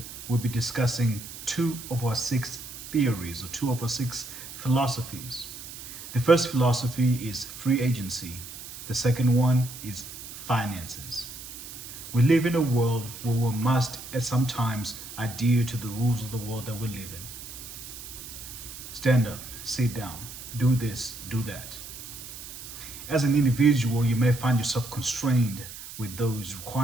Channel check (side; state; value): right; noise; hiss, 12 dB below the sound